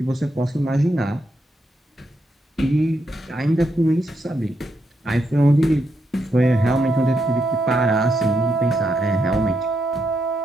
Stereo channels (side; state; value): both; normal; correlation 0.81